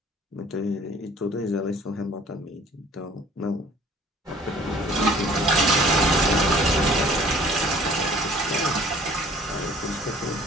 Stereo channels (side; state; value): both; normal; correlation 0.53